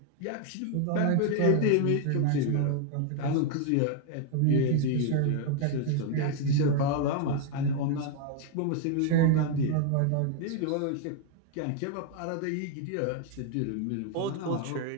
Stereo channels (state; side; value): different; both; correlation 0.01